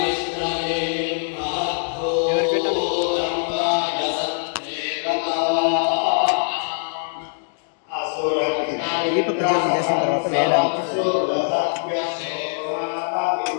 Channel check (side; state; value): right; silent; digital silence